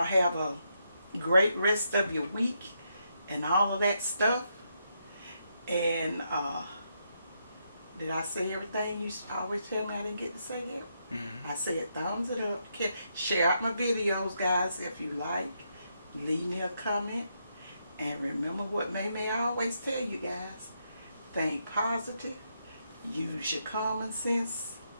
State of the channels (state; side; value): inverted; both; correlation -0.79